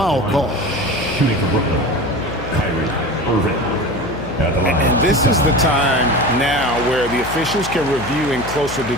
call. Shooting for Brooklyn, Kyrie Irving. At the line. And this is the time now where the officials can review in closer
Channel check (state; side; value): noise; left; hum, 10 dB below the sound